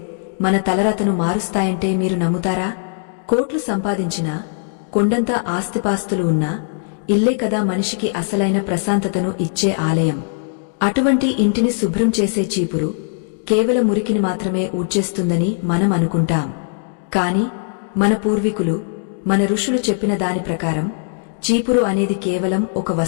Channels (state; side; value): silent; right; digital silence